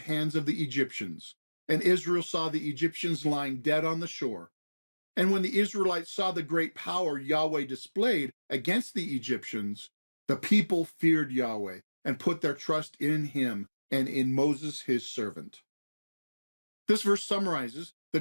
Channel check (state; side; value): inverted; both; correlation -1.00